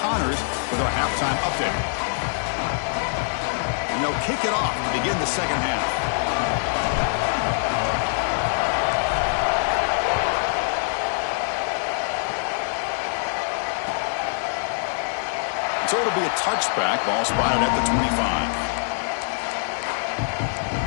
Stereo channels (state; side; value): silent; right; digital silence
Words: with our halftime update. And they'll kick it off to begin the 2nd half. So it'll be a touchback. Ball spotted at the 25.